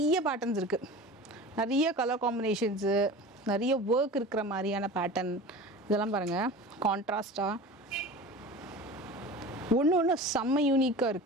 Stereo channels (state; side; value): normal; both; correlation 0.35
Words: பேட்டர்ன்ஸ் இருக்குது. நிறைய கலர் காம்பினேஷன்ஸு, நிறைய ஒர்க் இருக்கிற மாதிரியான பேட்டர்ன் இதெல்லாம் பாருங்கள். கான்ட்ராஸ்டாக ஒன்று செம்ம யூனிக்காக